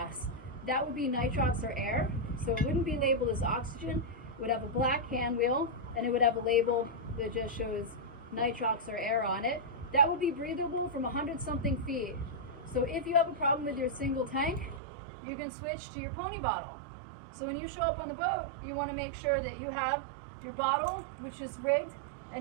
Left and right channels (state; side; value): drops out; left; at 14.8 s